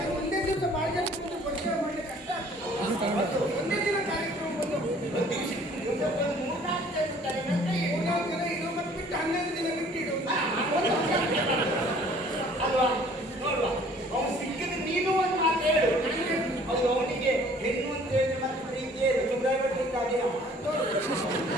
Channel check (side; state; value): both; normal; correlation 0.55